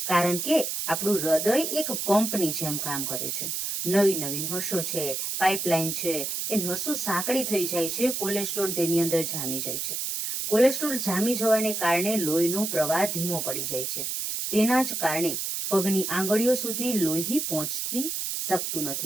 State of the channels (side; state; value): right; noise; hiss, 2 dB below the sound